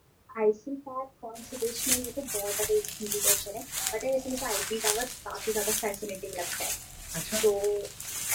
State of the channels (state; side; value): identical; both; correlation 1.00